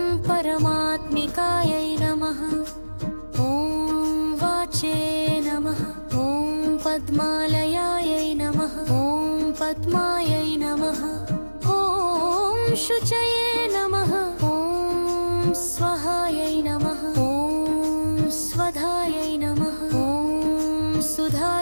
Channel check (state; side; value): inverted; both; correlation -1.00